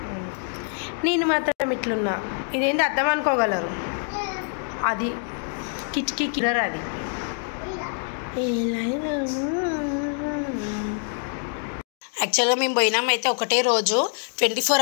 నేను మాత్రం ఇట్లున్నా, ఇదేంటి అర్థం అనుకోగలరు. అది కిటికీ కిలర్. అది యాక్చువల్గా మేము పోయినామైతే ఒకటే రోజు, 24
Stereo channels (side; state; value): right; silent; 55 dB below the other